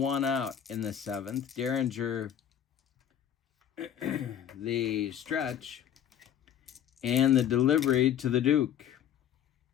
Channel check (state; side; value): quieter; right; 9.7 dB